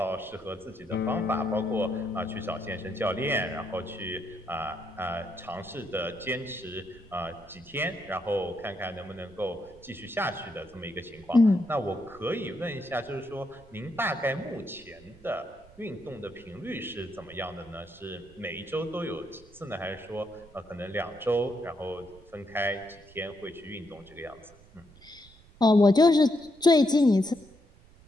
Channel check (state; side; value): noise; right; rumble, 24 dB below the sound